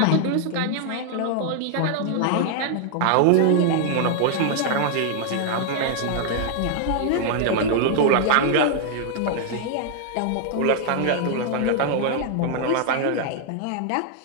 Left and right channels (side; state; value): both; different; correlation 0.00